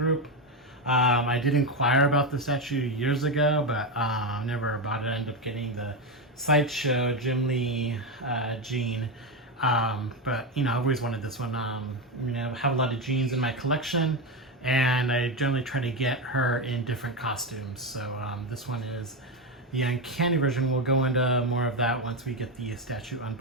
I did inquire about the statue years ago, but never bought it. I ended up getting the Sideshow Jim Lee Jean. But you know, I've always wanted this one. You know, I have a lot of jeans in my collection, and I generally try to get her in different costumes. So this one is the Uncanny version. We'll go into more of that once we get the statue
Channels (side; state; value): both; normal; correlation 0.11